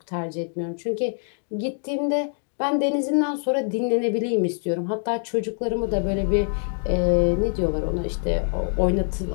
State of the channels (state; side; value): silent; right; 62 dB below the other